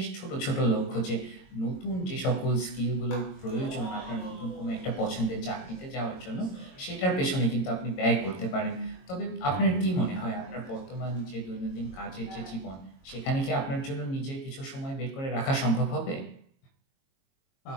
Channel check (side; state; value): right; late; 22 ms